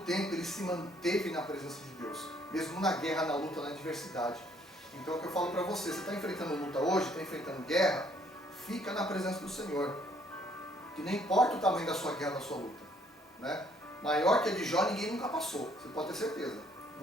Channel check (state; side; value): normal; both; correlation 0.64